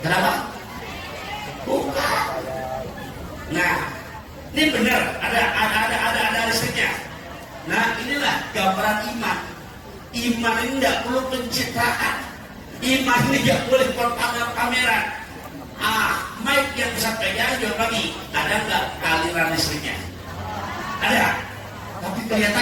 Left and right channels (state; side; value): identical; both; correlation 1.00